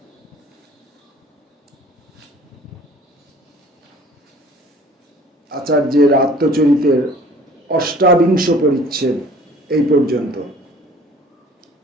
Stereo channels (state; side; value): normal; both; correlation 0.50